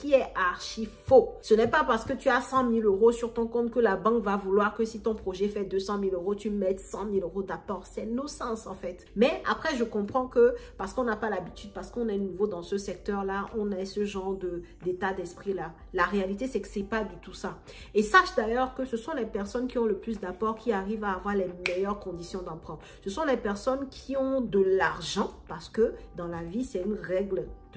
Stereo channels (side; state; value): both; identical; correlation 1.00